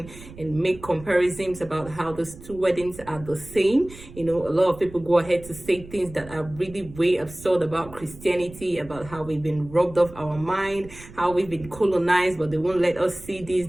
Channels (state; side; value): noise; right; rumble, 17 dB below the sound